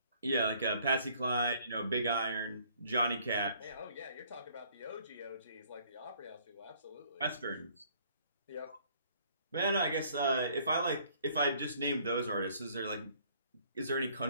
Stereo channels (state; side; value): inverted; both; correlation -0.60